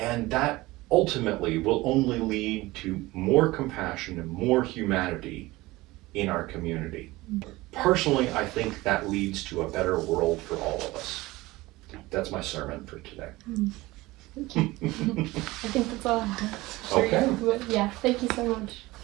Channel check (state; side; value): quieter; left; 19.8 dB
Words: that ultimately will only lead to more compassion and more humanity in our community. Personally, I think that leads to a better world for all of us. That's my sermon for today. Thank you. I think that's all I have. Okay. Yeah, thank you so much.